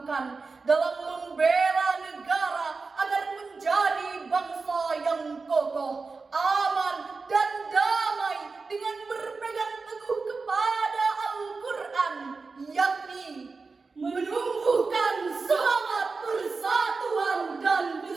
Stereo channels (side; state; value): left; quieter; 4.3 dB